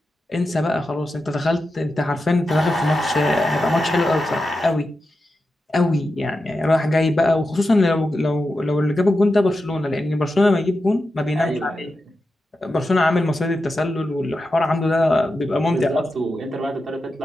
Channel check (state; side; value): normal; both; correlation 0.90